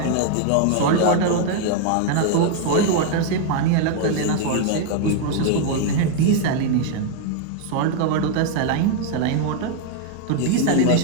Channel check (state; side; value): different; both; correlation 0.00